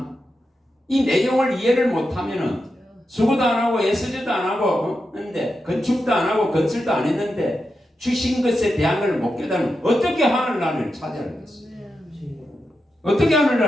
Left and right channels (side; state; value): both; normal; correlation 0.88